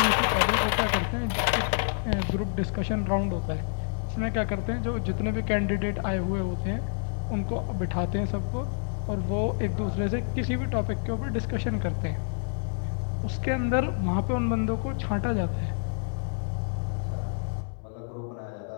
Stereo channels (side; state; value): right; silent; 59 dB below the other